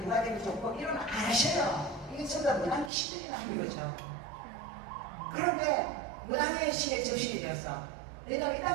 누가 되면 좋고 이러면 안 하셔요. 이게 전부 다 무당이 시들이나 하는 거죠. 그런데 무당의 신의 접신이 되어서 왜냐하면 이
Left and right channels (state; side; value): drops out; left; at 2.9 s